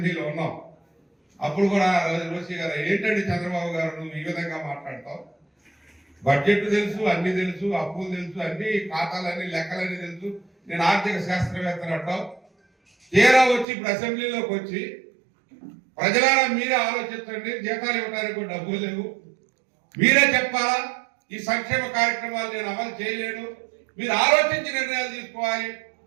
ఉన్నాం. అప్పుడు కూడా రోషి గారు, ఏంటండి చంద్రబాబు గారు నువ్వు ఈ విధంగా మాట్లాడతావు, బడ్జెట్ తెలుసు, అన్ని తెలుసు, అప్పులు తెలుసు, అన్ని ఖాతాలన్నీ లెక్కలన్నీ తెలుసు, నేను ఆర్థిక శాస్త్రవేత్తలు అంటావు, తీరా వచ్చి ఇప్పుడు అసెంబ్లీలోకి వచ్చి ప్రజలారా మీరే ఆలోచించండి, జీతాలు ఇవ్వడానికి కూడా డబ్బులు లేవు, మీరే చెప్పాలా ఈ సంక్షేమ కార్యక్రమాలు నేను అమలు చేయలేను, మీరు ఆలోచించి నిర్ణయాలు తీసుకోవాలి,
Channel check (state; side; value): drops out; left; at 13.7 s